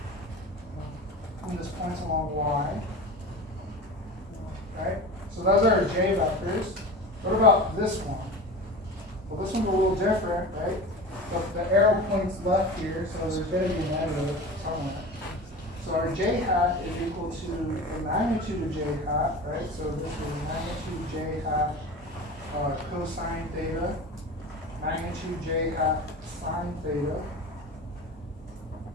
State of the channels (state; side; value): normal; both; correlation 0.32